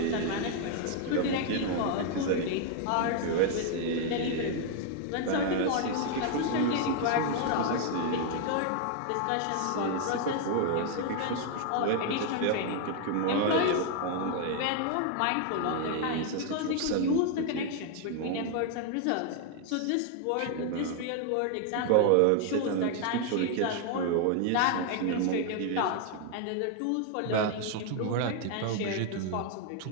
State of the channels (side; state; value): both; different; correlation 0.00